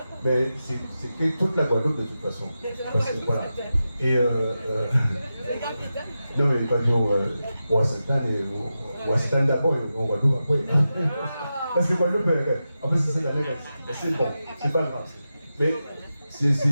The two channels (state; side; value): inverted; both; correlation -0.91